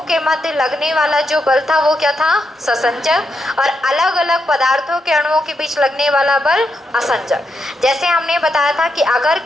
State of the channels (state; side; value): normal; both; correlation 0.83